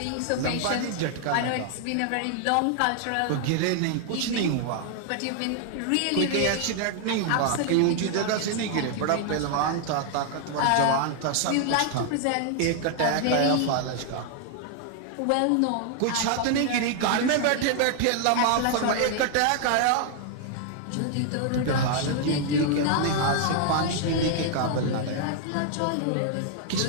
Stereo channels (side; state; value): both; different; correlation 0.00